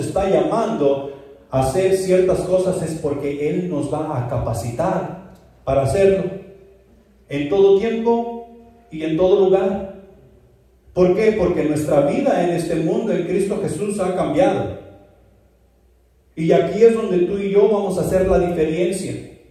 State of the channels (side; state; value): both; identical; correlation 1.00